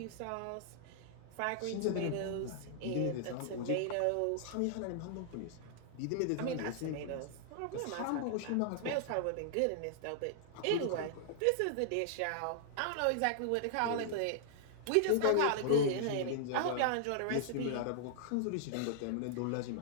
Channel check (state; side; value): different; both; correlation -0.01